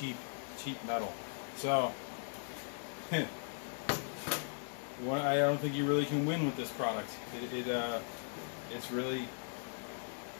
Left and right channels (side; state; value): right; silent; 52 dB below the other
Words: metal. So well, I don't think you really can win with this product. It's really